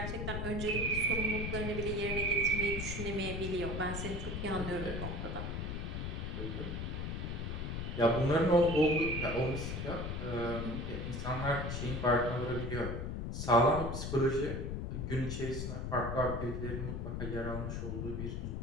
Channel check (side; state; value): left; noise; rumble, 3 dB below the sound